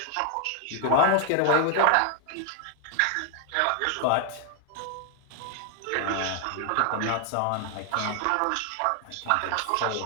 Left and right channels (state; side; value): different; both; correlation 0.00